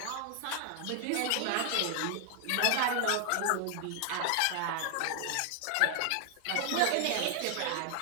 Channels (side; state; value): both; different; correlation 0.00